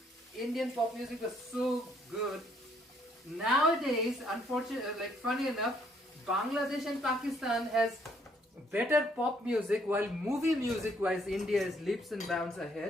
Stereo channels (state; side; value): normal; both; correlation 0.68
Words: Indian pop music was so good. Nowadays, unfortunately, like funny enough, Bangladesh and Pakistan has better pop music, while movie music wise India is leaps and bounds